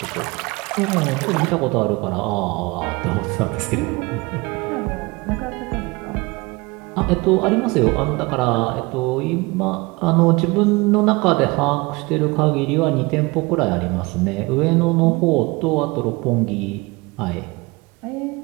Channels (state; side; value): quieter; left; 24.8 dB